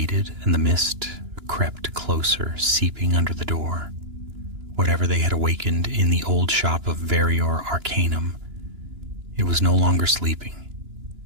and the mist crept closer, seeping under the door. Whatever they had awakened in the old shop of Varior Arcanum, it was no longer sleeping.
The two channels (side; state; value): left; late; 2.9 ms